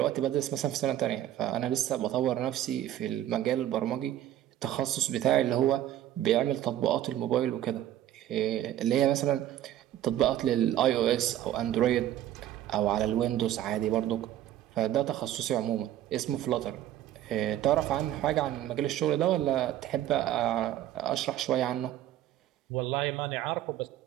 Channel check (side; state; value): left; quieter; 12.5 dB